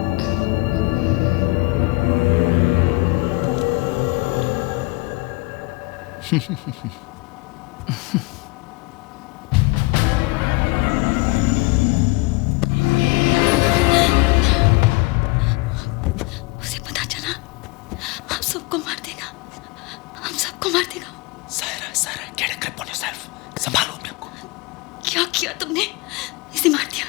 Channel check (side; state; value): right; quieter; 24.8 dB